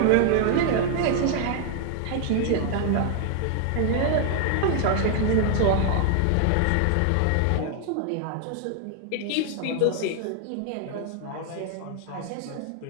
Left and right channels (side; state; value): both; different; correlation 0.00